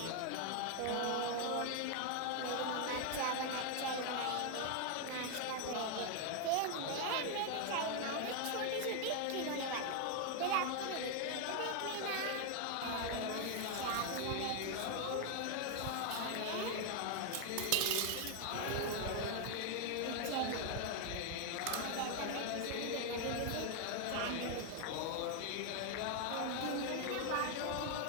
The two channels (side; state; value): both; different; correlation 0.00